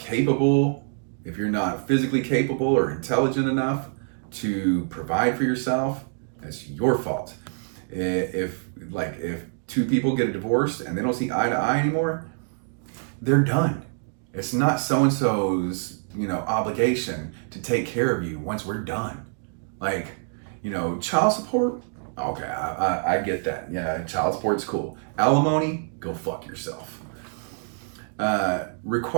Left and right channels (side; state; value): left; silent; digital silence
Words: if you're not physically capable or intelligent enough to provide for yourself, that's your fault. If 2 people get a divorce and they don't see eye to eye anymore, they're done. It's not so-and-so's, you know, obligation to take care of you once we're done. Like, you know, child support, okay, I get that. Yeah, child support's cool. Alimony, go fuck yourself.